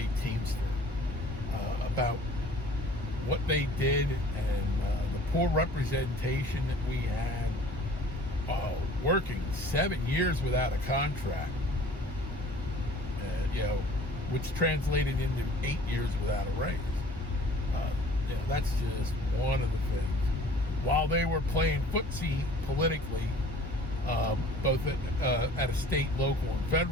Teamster, about what they did and the poor representation that we had, working 7 years without a contract, which translated into 8 years without a raise. That's just one of the things. While they were playing footsie politically, both at a state, local, and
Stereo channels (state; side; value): normal; both; correlation 0.49